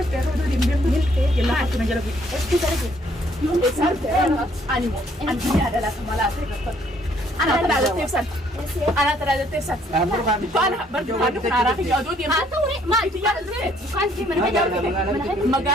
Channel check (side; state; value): both; normal; correlation 0.65